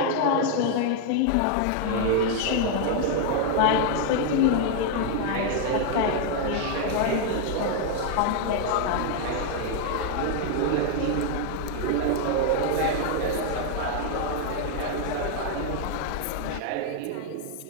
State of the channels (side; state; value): both; different; correlation 0.00